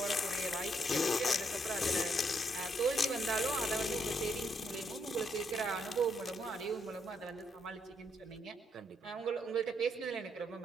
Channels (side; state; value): both; normal; correlation 0.75